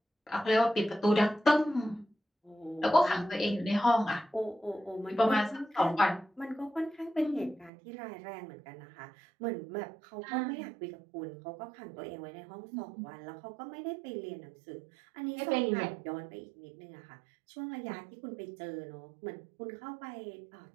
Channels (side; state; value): left; drops out; at 7.7 s